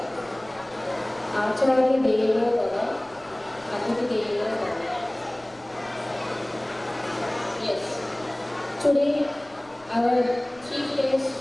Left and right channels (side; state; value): left; noise; rumble, 27 dB below the sound